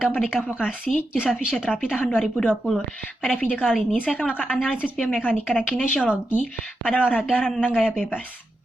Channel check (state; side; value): normal; both; correlation 0.87